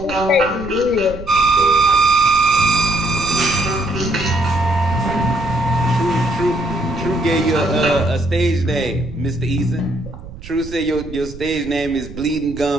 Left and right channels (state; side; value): noise; right; rumble, 14 dB below the sound